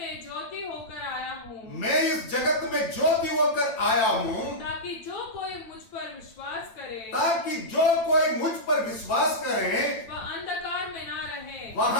ज्योति होकर आया हूँ, मैं इस जगत में ज्योति होकर आया हूँ, ताकि जो कोई मुझ पर विश्वास करे, वह अंधकार में ना रहे।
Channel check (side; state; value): right; late; 9.8 ms